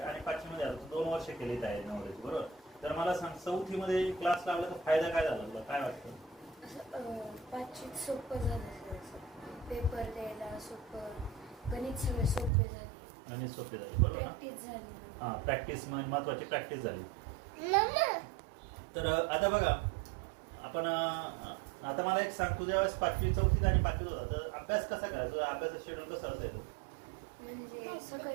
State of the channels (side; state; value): left; drops out; at 12.5 s